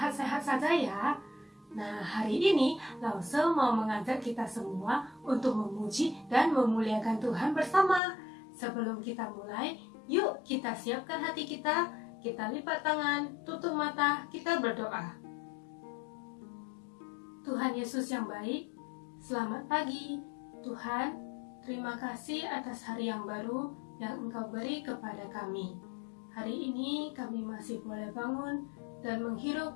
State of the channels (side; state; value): right; drops out; at 8.0 s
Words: saja ya. Nah, hari ini Lause mau mengajak kita semua untuk memuji dan memuliakan Tuhan bersama. Sebelum kita mulai, yuk kita siapkan hati kita lipat tangan, tutup mata, kita berdoa. Tuhan Yesus yang baik, selamat pagi. Tuhan, terima kasih atas hari yang baru yang Engkau beri kepada kami. Hari ini kami masih boleh bangun dan menghirup